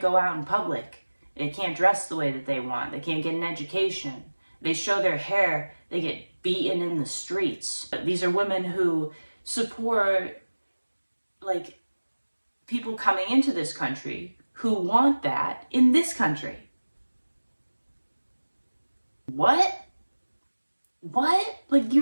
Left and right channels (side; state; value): both; inverted; correlation -1.00